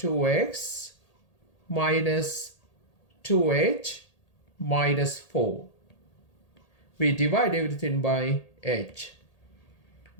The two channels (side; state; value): right; late; 1.8 ms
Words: minus 2h minus 4. We divide everything by h.